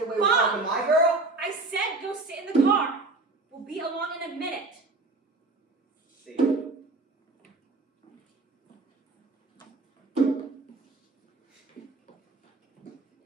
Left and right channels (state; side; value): quieter; left; 3.3 dB